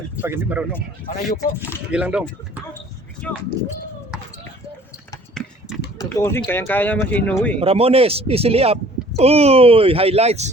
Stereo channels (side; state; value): both; normal; correlation 0.53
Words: Pag hindi marunong. Manayuko. Sige lang dong. Tutusin, kayang-kaya naman si Inoue. Ramones, easily up. Uy,